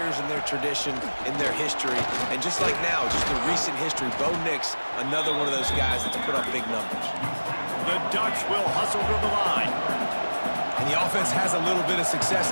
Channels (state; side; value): inverted; both; correlation -1.00